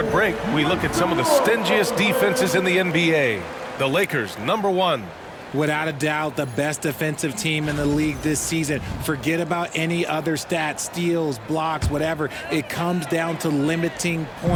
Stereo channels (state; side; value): identical; both; correlation 1.00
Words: break, we look at some of the stingiest defenses in the NBA. The Lakers, number 1. Without a doubt, the best defensive team in the league this season. Forget about any other stats, steals, blocks, whatever. It comes down to limiting